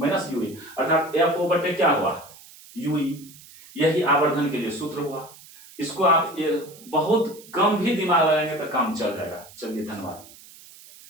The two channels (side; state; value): right; noise; hiss, 21 dB below the sound